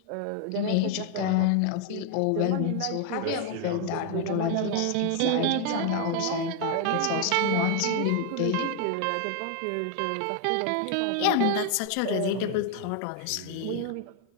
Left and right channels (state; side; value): different; both; correlation 0.00